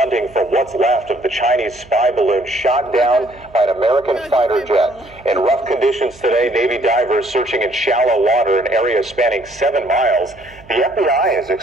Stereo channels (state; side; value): noise; right; hum, 24 dB below the sound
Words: for what's left of the Chinese spy balloon shot down by an American fighter jet. In rough conditions today, Navy divers searching in shallow water, an area spanning 7 miles. The FBI is